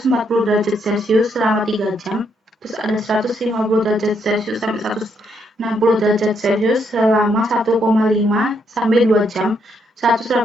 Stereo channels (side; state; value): both; normal; correlation 0.75